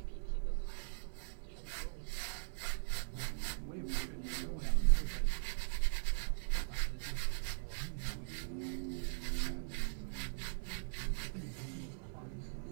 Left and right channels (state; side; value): silent; left; 51 dB below the other